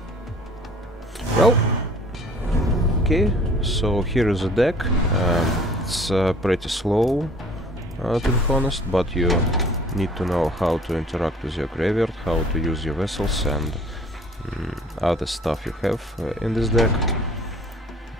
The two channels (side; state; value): both; normal; correlation 0.52